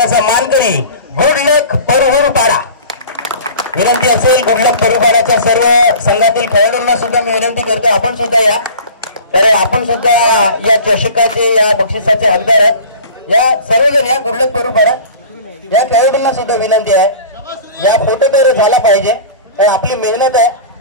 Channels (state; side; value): inverted; both; correlation -0.40